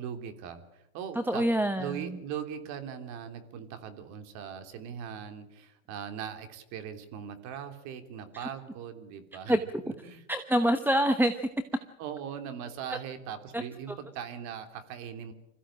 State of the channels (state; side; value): normal; both; correlation 0.71